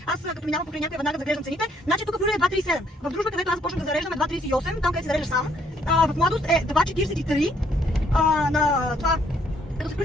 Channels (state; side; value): normal; both; correlation 0.67